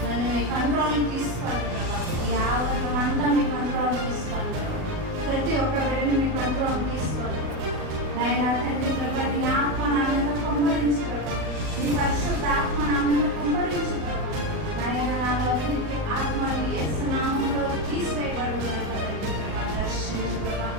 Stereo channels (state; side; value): late; left; 38 ms